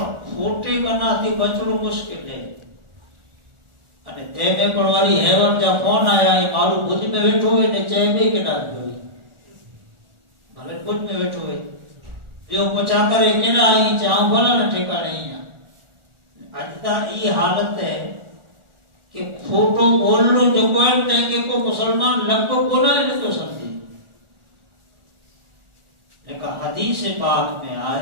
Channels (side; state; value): left; late; 1.4 ms